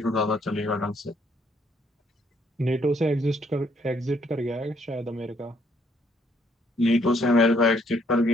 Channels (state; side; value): normal; both; correlation 0.68